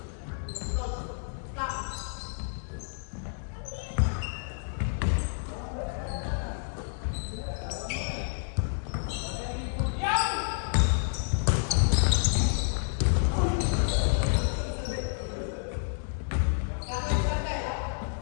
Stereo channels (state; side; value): silent; right; digital silence